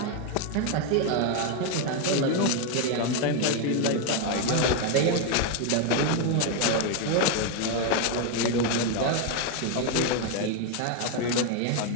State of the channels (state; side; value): different; both; correlation 0.01